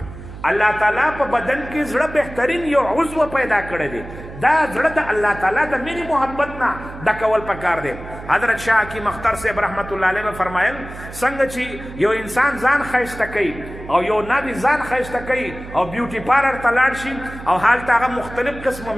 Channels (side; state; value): right; noise; hum, 13 dB below the sound